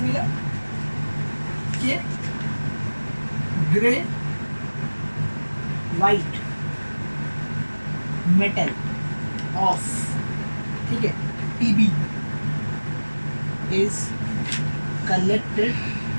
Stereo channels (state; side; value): inverted; both; correlation -1.00